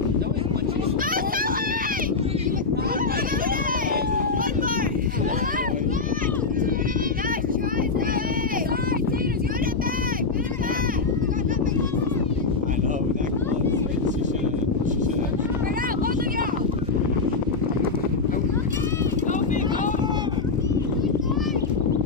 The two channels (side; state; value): right; quieter; 4.2 dB